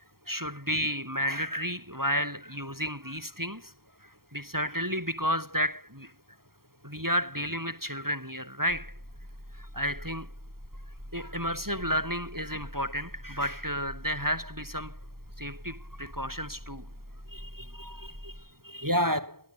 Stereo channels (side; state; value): left; late; 0.93 ms